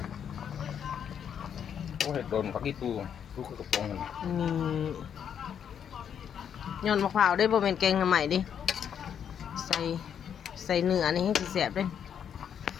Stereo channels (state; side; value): quieter; right; 8.3 dB